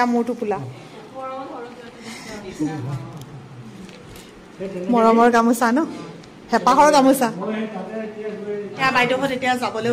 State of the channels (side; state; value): both; identical; correlation 1.00